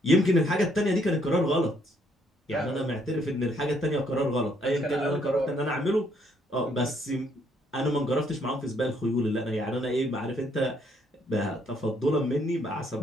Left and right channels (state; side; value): normal; both; correlation 0.69